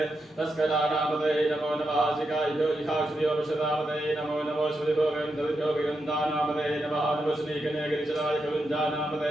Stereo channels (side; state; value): both; normal; correlation 0.85